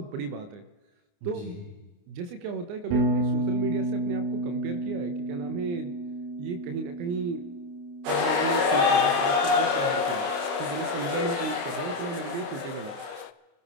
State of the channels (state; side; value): late; left; 29 ms